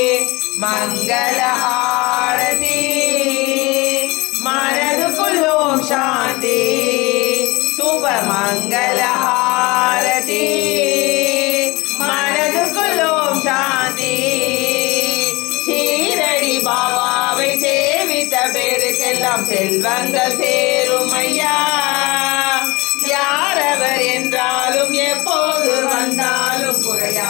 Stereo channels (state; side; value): quieter; right; 23.5 dB